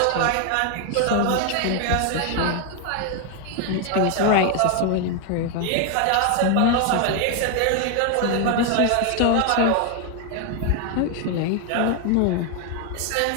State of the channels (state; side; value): different; both; correlation 0.01